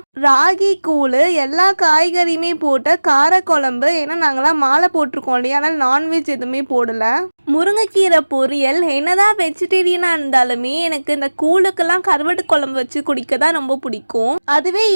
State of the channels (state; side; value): inverted; both; correlation -1.00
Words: ராகி கூழ், எல்லா காய்கறியுமே போட்ட காரக்குழம்பு. ஏன்னா நாங்களாம் மாலை போட்டிருக்கோம் இல்லையா, ஆனால் நான்வெஜ் எதுவுமே போடல. முருங்கைக்கீரை பொரியல். என்னதான் வெஜிடேரியனாக இருந்தாலுமே எனக்கு இந்த கூழுக்கெல்லாம் கருவாட்டு குழம்பு வச்சு குடிக்க தான் ரொம்ப பிடிக்கும். அதுவே